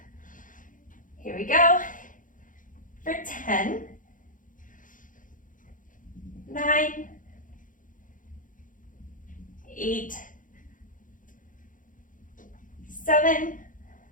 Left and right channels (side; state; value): right; late; 0.38 ms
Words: Here we go, for 10, 9, 8, 7,